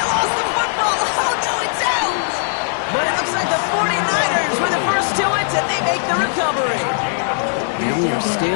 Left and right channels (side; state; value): right; silent; 67 dB below the other